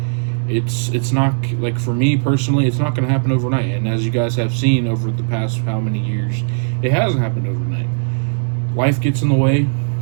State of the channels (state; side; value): silent; left; digital silence